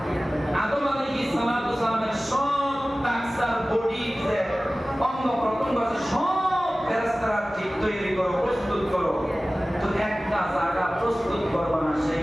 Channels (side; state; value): both; normal; correlation 0.97